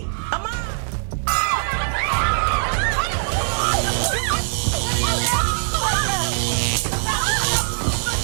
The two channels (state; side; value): silent; left; digital silence